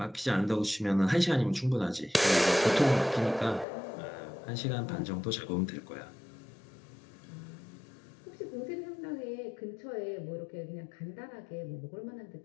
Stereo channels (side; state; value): right; drops out; at 3.7 s